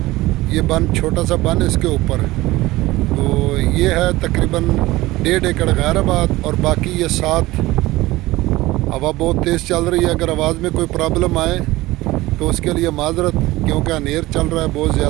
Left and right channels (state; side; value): quieter; left; 18.7 dB